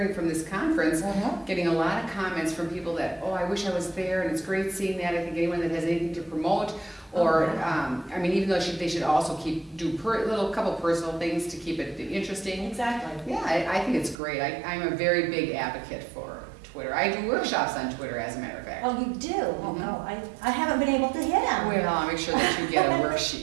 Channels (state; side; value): drops out; left; at 14.2 s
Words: from this conference, getting a lot of comments from people that, oh, I wish I was there, and it's great seeing that. I think anyone that has anything to promote, or I mean, even though they should also do couple personal things to keep it interesting. Exactly. Yeah, I think it's great. I'm a very big advocate for Twitter. I do workshops on Twitter, as a matter of fact. Oh, you do? Oh, no, I haven't been able to hit them. Well, I'll make sure that you get a